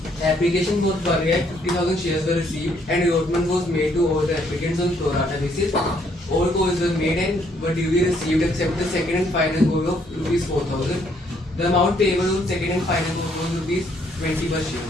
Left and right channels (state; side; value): normal; both; correlation 0.68